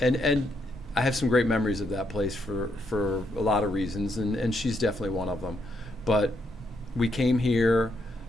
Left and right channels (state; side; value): normal; both; correlation 0.77